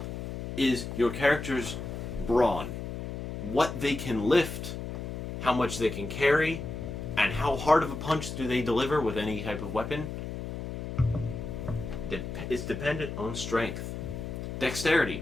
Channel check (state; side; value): noise; left; hum, 6 dB below the sound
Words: is your character's brawn. What they can lift, how much they can carry, and how hard of a punch do they deliver with any type of weapon is dependent on strength. Dexterity.